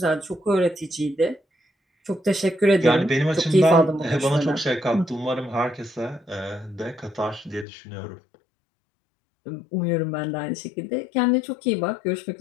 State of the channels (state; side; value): drops out; right; at 7.7 s